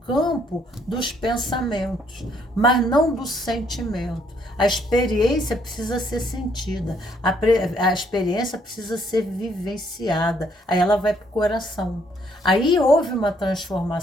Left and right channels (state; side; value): normal; both; correlation 0.68